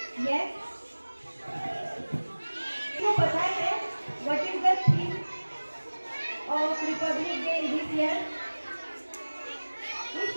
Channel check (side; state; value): both; inverted; correlation -1.00